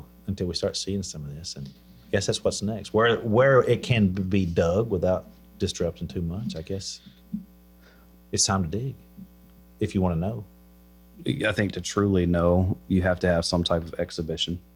until we start seeing some of this. And I guess that's what's next. Where it can be dug without disrupting too much, I guess it's time to dig if you want to know. I think to truly know, you have to have some type of exhibition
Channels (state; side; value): identical; both; correlation 1.00